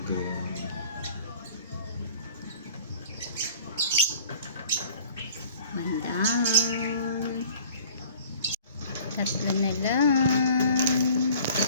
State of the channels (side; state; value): both; inverted; correlation -0.49